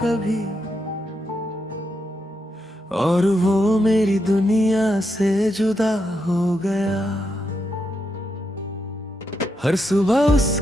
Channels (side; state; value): both; normal; correlation 0.83